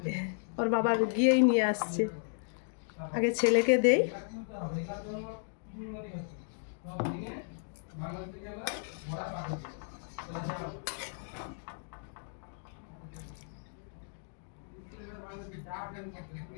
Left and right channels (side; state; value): right; silent; digital silence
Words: ওর বাবা গিয়েই নিয়ে আসছে। আগে ছেলেকে দেই।